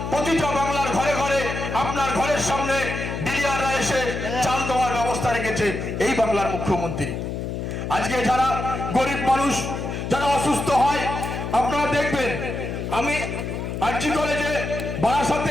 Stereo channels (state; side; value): noise; left; hum, 4 dB below the sound